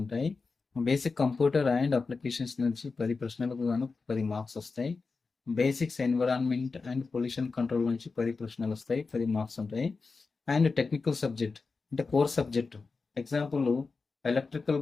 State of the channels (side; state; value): right; quieter; 4.3 dB